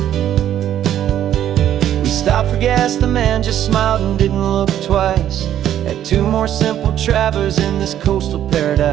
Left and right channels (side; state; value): left; quieter; 11.1 dB